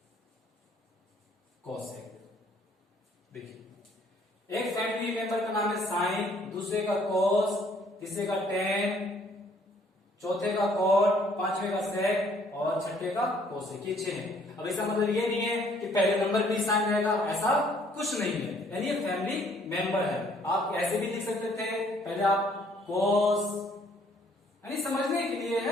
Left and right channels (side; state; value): both; normal; correlation 0.62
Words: कॉसेक। देखिए एक फैमिली मेंबर का नाम है साइन, दूसरे का कॉस, तीसरे का टेन, चौथे का कॉट, पांचवे का सेक और छठे का कोसेक। ये 6 है। अब इसका मतलब ये नहीं है कि पहले नंबर भी साइन रहेगा, ऐसा कुछ नहीं है। यानी ये फैमिली मेंबर है। आप ऐसे भी लिख सकते थे, पहले आप कोस, यानी समझने के लिए